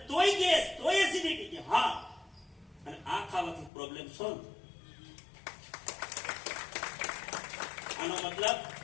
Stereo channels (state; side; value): drops out; right; at 3.7 s